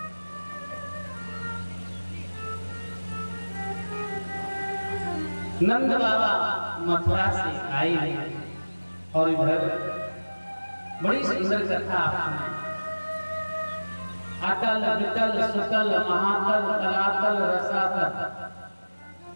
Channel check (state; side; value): inverted; both; correlation -1.00